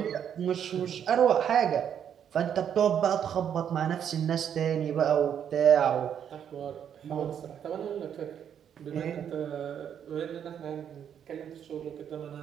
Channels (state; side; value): quieter; left; 8.8 dB